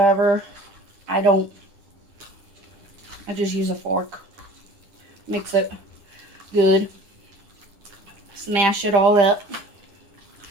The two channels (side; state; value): left; late; 10 ms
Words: I just use a fork. Mix it good. Smash it all up.